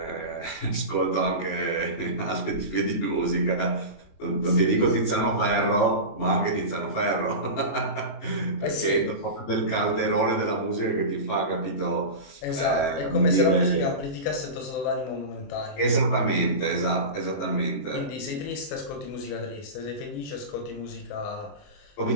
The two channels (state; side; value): late; right; 21 ms